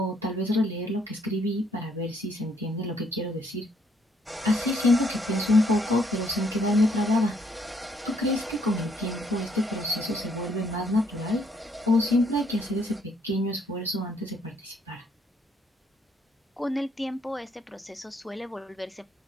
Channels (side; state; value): both; normal; correlation 0.69